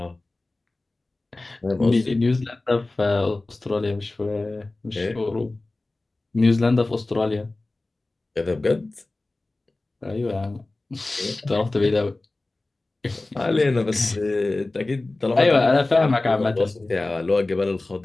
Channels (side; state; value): right; quieter; 3.0 dB